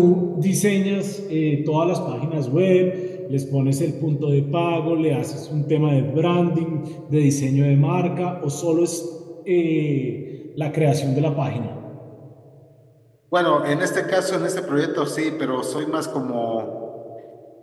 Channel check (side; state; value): both; identical; correlation 1.00